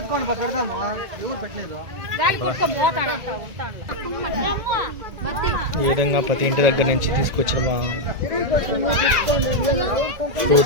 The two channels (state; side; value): late; left; 1.9 ms